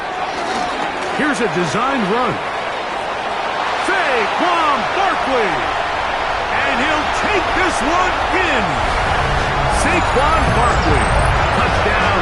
Here's a designed run. Saquon Barkley. And he'll take this one in. Saquon Barkley. Touchdown,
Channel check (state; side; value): identical; both; correlation 1.00